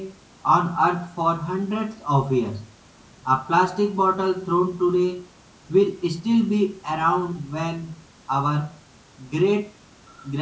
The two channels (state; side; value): identical; both; correlation 1.00